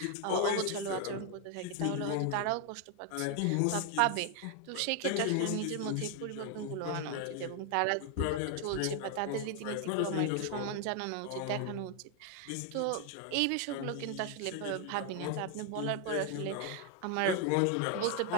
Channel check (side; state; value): both; different; correlation 0.01